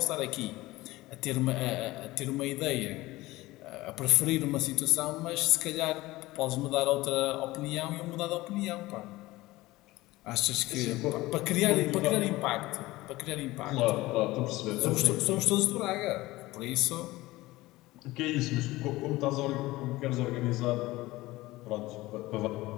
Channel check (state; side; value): quieter; right; 19.0 dB